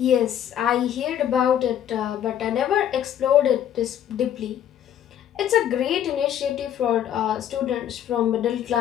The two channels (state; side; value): quieter; right; 10.3 dB